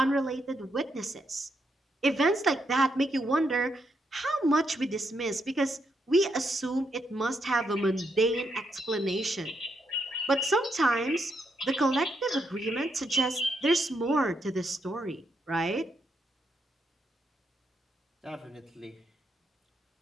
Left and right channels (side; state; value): both; normal; correlation 0.79